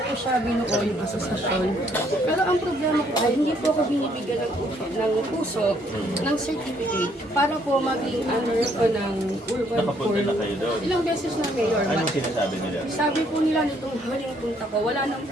siya binuo yung asosasyon. Pero ang problema po ay hindi po ako binibigyan ng puso ng certificate para po maging under ko ng urban Nakapunta core. na kayo doon. Ilang beses na, Mayor. Anong sinasabi nila? Sabi po nila nitong huling punta ko, wala nang,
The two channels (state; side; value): normal; both; correlation 0.67